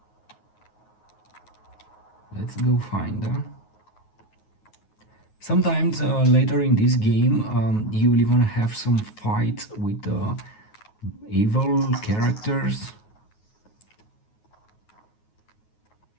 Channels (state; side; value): late; right; 9.4 ms